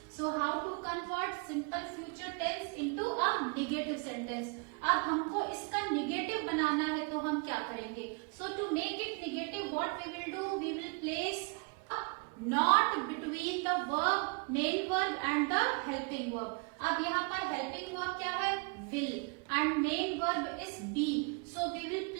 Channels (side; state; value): left; quieter; 33.2 dB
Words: So how to convert simple future tense into a negative sentence? अब हमको इसका negative बनाना है तो हम क्या करेंगे? So to make it negative, what we will do? We will place a not between the verb, main verb and the helping verb. अब यहाँ पर helping verb क्या है? Will and main verb is be. So we will